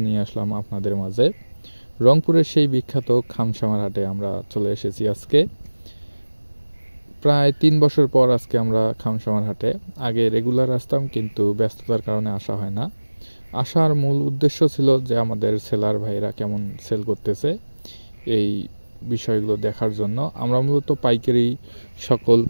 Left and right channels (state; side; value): inverted; both; correlation -1.00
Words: নিয়ে আসলাম আপনাদের মাঝে। রংপুরের সেই বিখ্যাত খামসামার হাটে আমরা চলে এসেছি আজকে। প্রায় ৩ বছর পর আজকে আমরা খামসামার হাটে। আগে রেগুলার আসতাম, কিন্তু ব্যস্ততার কারণে আসা হয় না। আসার মূল উদ্দেশ্য ছিল যে আমাদের সেলার ভাইরা কেমন সেল করতেছে এই বিষয়গুলো দেখার জন্য। আমরা মূলত পাইকারি সকল